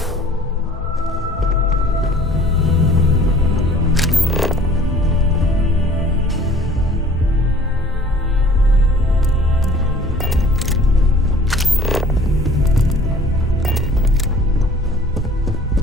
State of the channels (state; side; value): normal; both; correlation 0.51